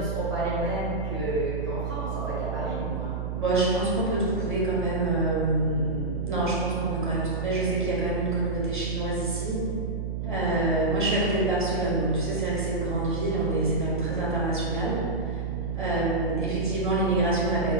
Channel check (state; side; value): noise; right; hum, 3 dB below the sound